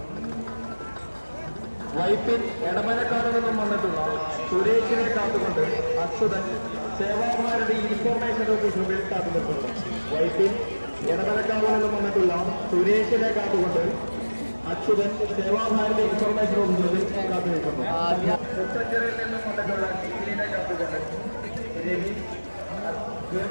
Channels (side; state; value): both; inverted; correlation -1.00